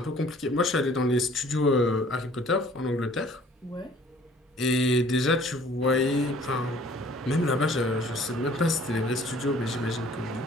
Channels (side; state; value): both; normal; correlation 0.54